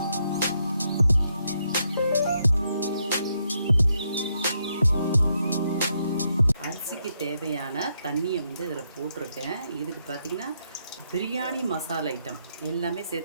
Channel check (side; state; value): both; inverted; correlation -0.78